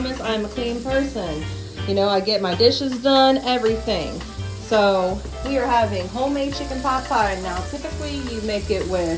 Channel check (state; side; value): identical; both; correlation 1.00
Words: I'm a clean person. You know, I get my dishes done, everything. So we are having homemade chicken pot pie. Now, typically you make it